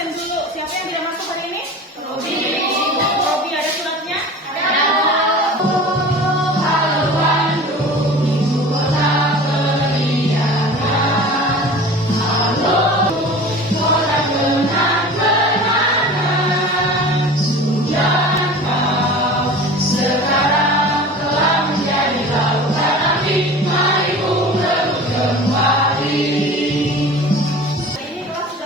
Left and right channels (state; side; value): normal; both; correlation 0.39